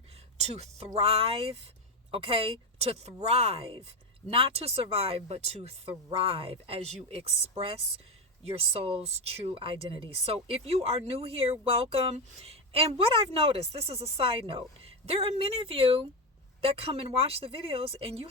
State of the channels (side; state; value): both; normal; correlation 0.12